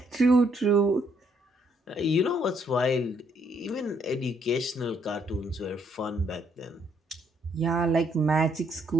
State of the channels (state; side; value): normal; both; correlation 0.70